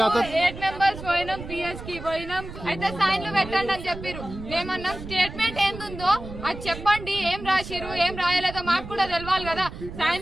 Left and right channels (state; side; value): noise; right; rumble, 11 dB below the sound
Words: members పోయినాం, PS కి పోయినాం. అయితే సైన్లు పెట్టండి అని చెప్పారు. మేమన్నాం స్టేట్మెంట్ ఏందుందో అది చెప్పండి, ఏం రాసిరు ఏం రాయలేదో మాకు కూడా తెలవాలి కదా.